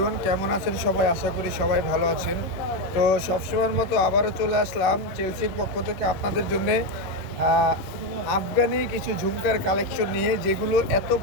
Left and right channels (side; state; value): right; late; 11 ms